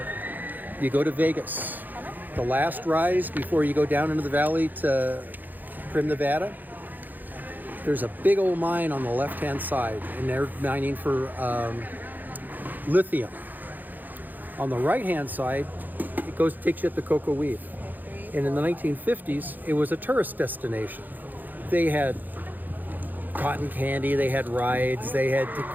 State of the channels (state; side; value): late; left; 0.085 ms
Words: You go to Vegas. The last rise before you go down into the valley to Prim, Nevada. There's a big old mine on the left-hand side, and they're mining for lithium. On the right-hand side, it takes you up the Cocoa Weave. And in the 1950s, it was a tourist destination. They had cotton candy, they had rides, they had